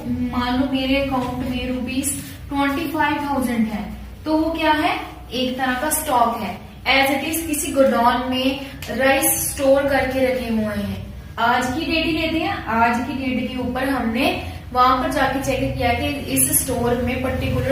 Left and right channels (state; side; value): identical; both; correlation 1.00